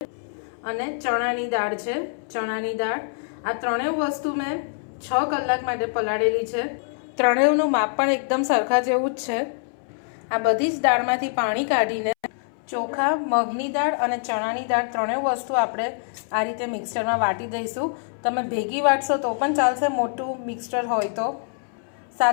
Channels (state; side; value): silent; right; 62 dB below the other